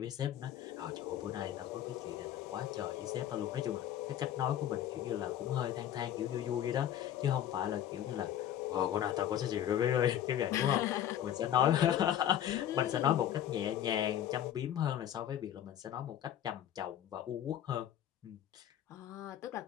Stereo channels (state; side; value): quieter; right; 10.9 dB